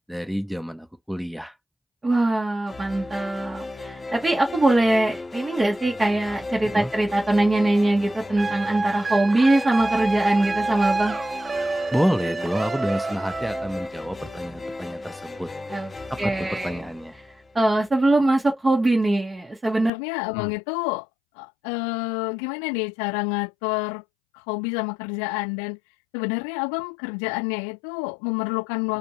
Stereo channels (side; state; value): right; drops out; at 19.9 s